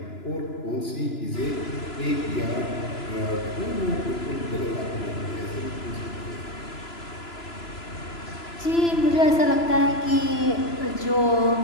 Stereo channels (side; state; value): right; late; 2.9 ms